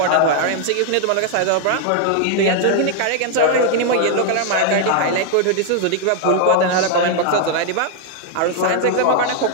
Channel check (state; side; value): different; both; correlation 0.00